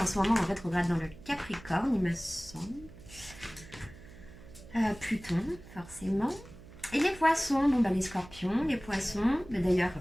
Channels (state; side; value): noise; right; hum, 18 dB below the sound